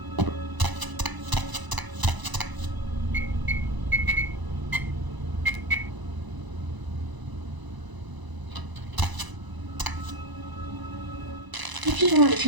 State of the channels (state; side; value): late; left; 1.0 ms